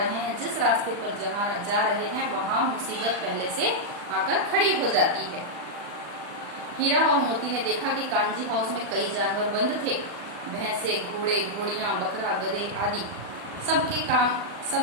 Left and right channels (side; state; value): left; late; 40 ms